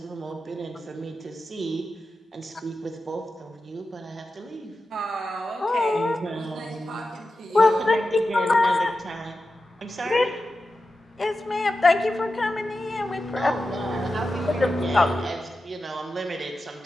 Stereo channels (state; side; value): normal; both; correlation 0.92